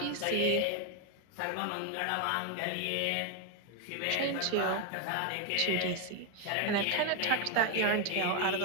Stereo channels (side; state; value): both; different; correlation 0.01